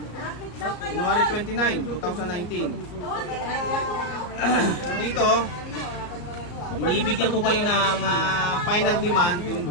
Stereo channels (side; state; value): right; late; 34 ms